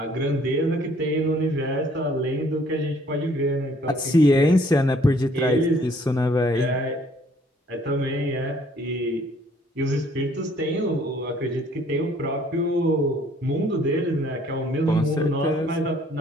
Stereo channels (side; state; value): both; normal; correlation 0.61